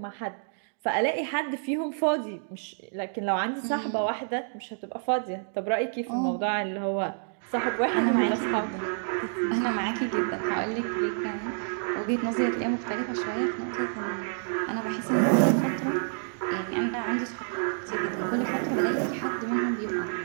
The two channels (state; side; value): silent; left; digital silence